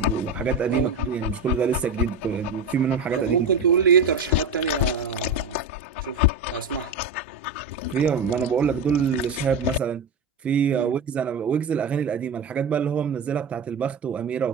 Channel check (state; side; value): quieter; left; 3.5 dB